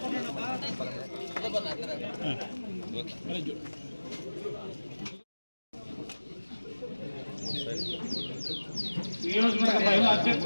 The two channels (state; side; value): inverted; both; correlation -1.00